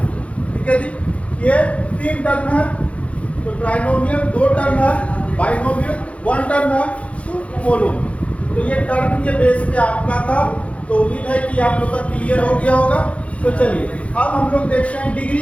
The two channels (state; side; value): late; right; 0.063 ms